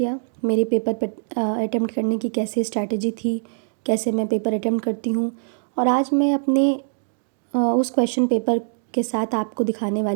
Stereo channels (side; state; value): left; silent; digital silence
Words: मेरे पेपर पर अटेम्प्ट करने की कैसे स्ट्रैटेजी थी, कैसे मैं पेपर अटेम्प्ट करती हूँ। और आज मैं अपने उस क्वेश्चन पेपर के साथ आपको दिखाने